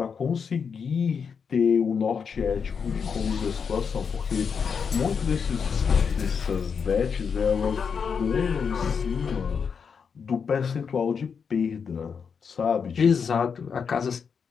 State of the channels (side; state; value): right; quieter; 6.3 dB